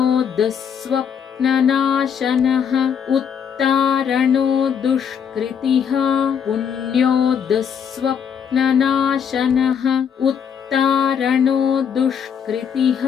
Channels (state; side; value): quieter; right; 7.6 dB